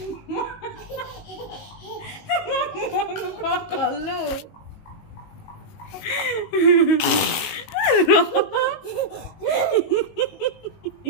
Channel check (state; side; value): late; right; 19 ms